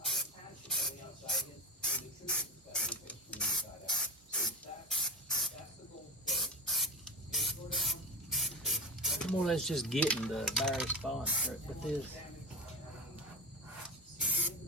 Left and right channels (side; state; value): both; normal; correlation 0.19